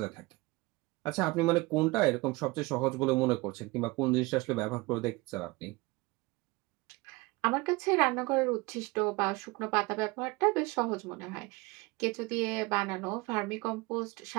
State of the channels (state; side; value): quieter; left; 23.5 dB